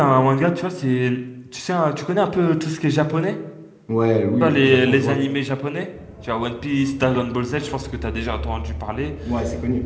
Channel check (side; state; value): both; identical; correlation 1.00